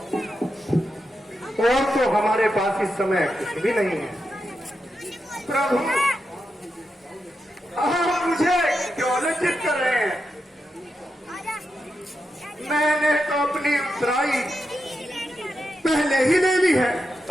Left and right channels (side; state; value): both; normal; correlation 0.87